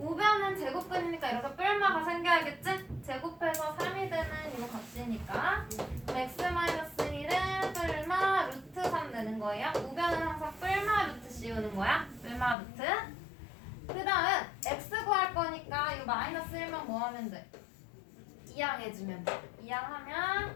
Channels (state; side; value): drops out; right; at 12.6 s